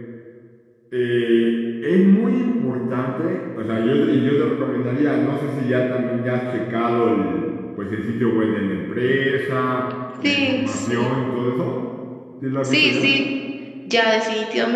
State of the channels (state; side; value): identical; both; correlation 1.00